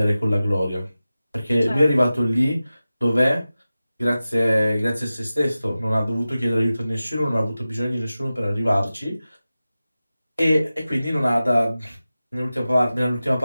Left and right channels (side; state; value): both; inverted; correlation -0.95